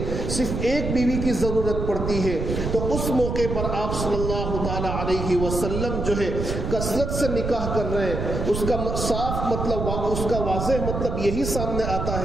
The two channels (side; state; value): right; noise; rumble, 3 dB below the sound